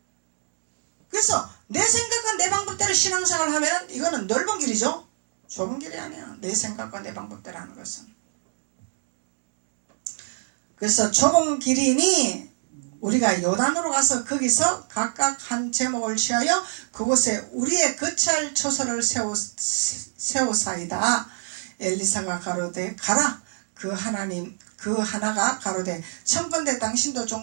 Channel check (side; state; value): left; silent; digital silence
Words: 그래서 내 생각과 내 방법대로 신앙생활을 하면 이거는 넓은 길이죠. 좁은 길이 아니야. 내 생각과 내 방법대로 하는 것은. 그래서 좁은 길이니 우리가 요단으로 가서 거기서 각각 한 제목을 취하여 그곳에 우리의 거처할 처소를 세우사이다. 엘리사가 가로되 가라. 그 하나가 가로되 청컨대 당신도